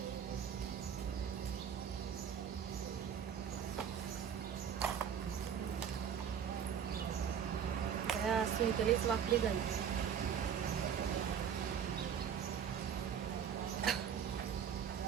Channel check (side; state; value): left; quieter; 8.0 dB